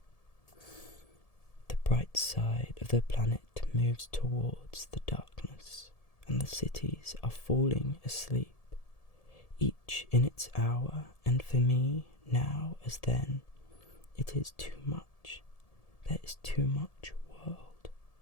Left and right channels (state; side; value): late; right; 1.7 ms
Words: The bright side of the planet moves towards the darkness, and the cities are falling asleep, each in its hour, and for me, now as then, it is too much. There is too much world.